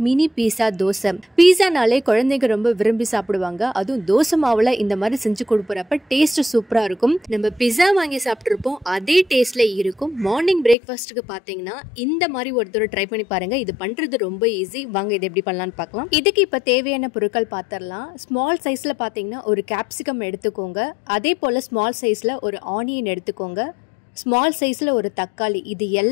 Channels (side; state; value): right; drops out; at 10.8 s